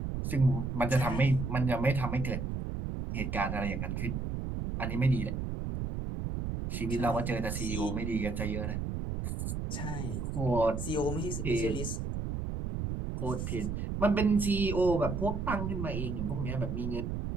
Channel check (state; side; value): noise; right; rumble, 3 dB below the sound